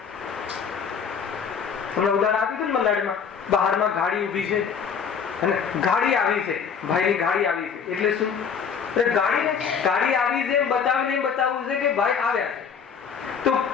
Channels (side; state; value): right; quieter; 6.7 dB